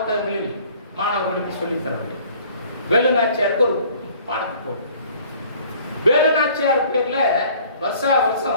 மாணவர்களுக்கு சொல்லித் தரவில்லை? வேலுநாச்சியாருக்கு ஒரு பாடத்தை போடு. வேலுநாச்சியார் பேர்ல வருஷா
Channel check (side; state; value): both; inverted; correlation -0.54